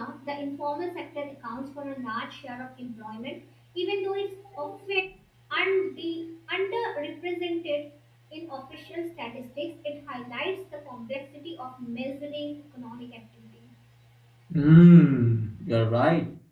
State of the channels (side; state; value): both; identical; correlation 1.00